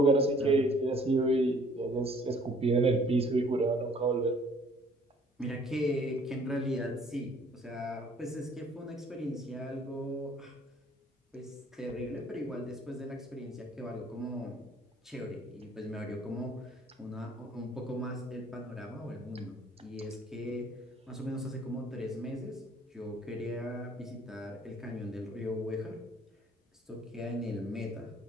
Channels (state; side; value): normal; both; correlation 0.58